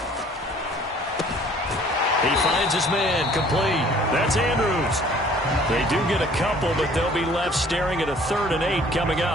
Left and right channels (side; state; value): both; normal; correlation 0.54